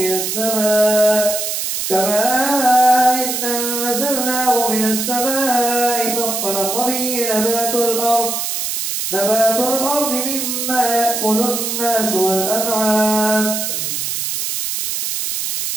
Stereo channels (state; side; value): noise; right; hiss, 2 dB below the sound